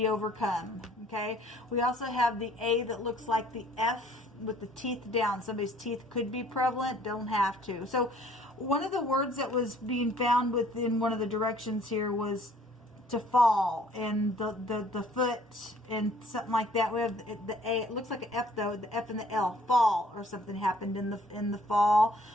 overcome. Okay, we also have the A that looks like the F with the teeth down. Somebody's teeth could be prevalent, don't have to. So one of the words that was being found within one of the directions here was to fall, and the foot and something like that. We have the A. It looks like an F though. The F and the L, fall, or something happened in the fall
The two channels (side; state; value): both; normal; correlation 0.58